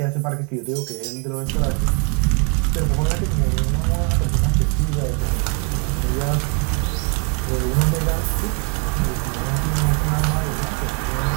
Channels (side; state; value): left; quieter; 36.2 dB